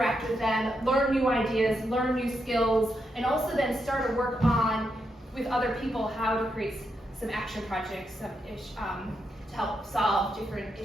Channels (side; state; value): both; normal; correlation 0.83